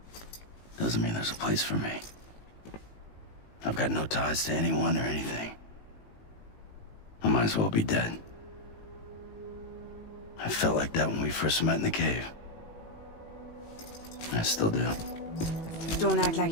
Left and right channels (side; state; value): right; late; 18 ms